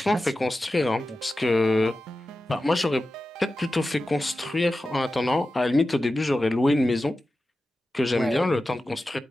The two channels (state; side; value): normal; both; correlation 0.93